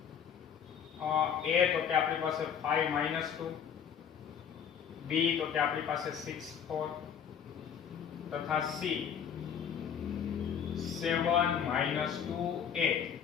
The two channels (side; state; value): right; quieter; 8.0 dB